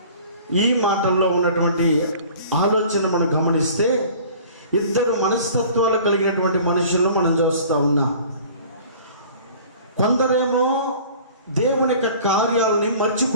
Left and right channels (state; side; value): inverted; both; correlation -0.47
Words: ఈ మాటల్లో ఉన్నటువంటి ఆలోచన మనం గమనిస్తే ఇద్దరు మనస్తత్వాలు కలిగినటువంటి మనుషులను మనం చూస్తూ ఉన్నాం. కొందరేమో దేవుని యొక్క కార్యాలని